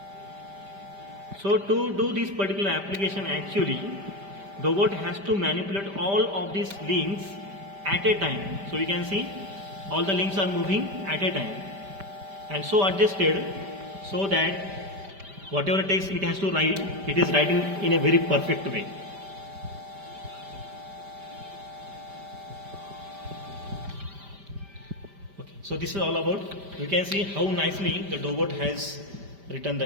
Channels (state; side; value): late; left; 5.1 ms